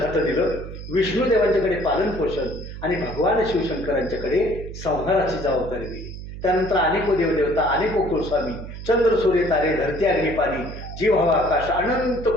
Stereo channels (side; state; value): right; noise; hum, 10 dB below the sound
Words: खातं दिलं, विष्णुदेवांच्याकडे पालन पोषण, आणि भगवान शिवशंकरांच्याकडे संहाराची जबाबदारी दिली. त्यानंतर अनेको देवदेवता, अनेको कुलस्वामी, चंद्र सूर्य तारे, धरती अग्नी पाणी, जीव हवा आकाश, अनंत